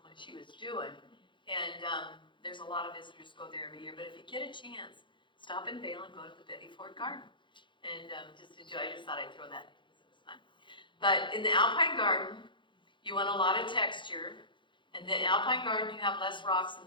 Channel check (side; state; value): right; late; 0.23 ms